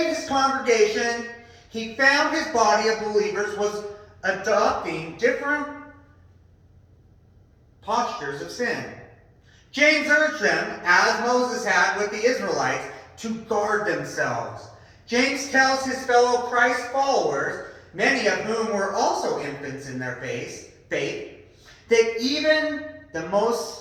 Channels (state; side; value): identical; both; correlation 1.00